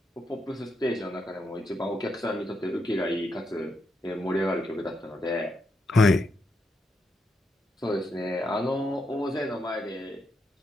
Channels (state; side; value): normal; both; correlation 0.81